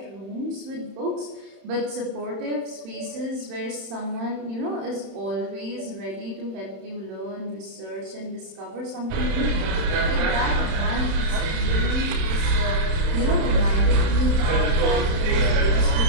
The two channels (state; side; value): late; left; 31 ms